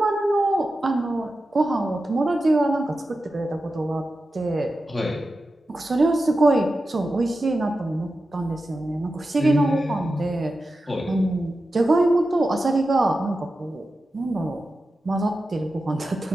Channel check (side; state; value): both; normal; correlation 0.92